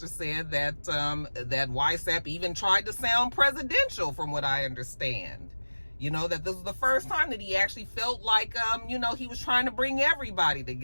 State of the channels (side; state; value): both; inverted; correlation -1.00